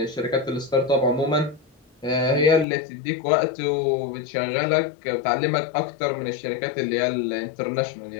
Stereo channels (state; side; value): drops out; right; at 2.7 s